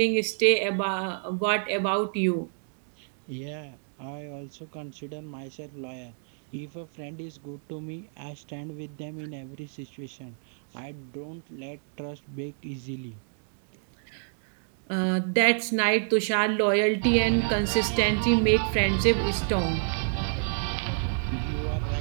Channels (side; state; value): left; silent; 59 dB below the other